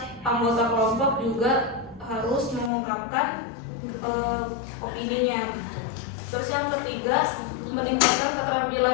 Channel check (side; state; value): right; drops out; at 2.7 s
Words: anggota kelompok juga harus mengungkapkan opininya. Terus yang ketiga, meningkatkan